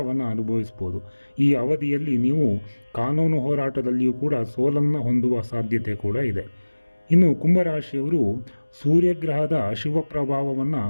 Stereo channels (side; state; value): both; inverted; correlation -1.00